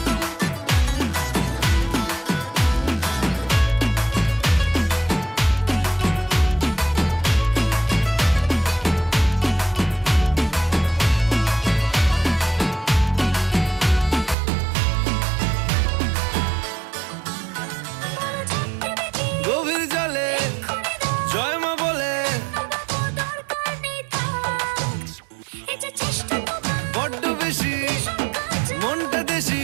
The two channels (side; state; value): left; drops out; at 14.4 s